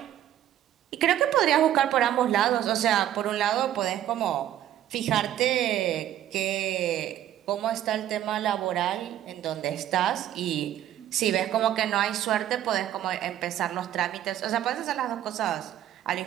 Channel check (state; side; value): quieter; left; 11.9 dB